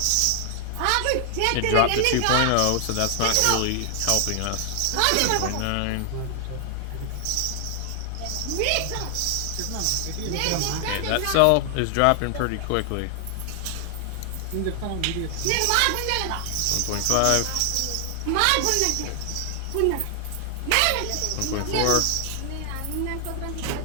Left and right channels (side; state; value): both; different; correlation 0.00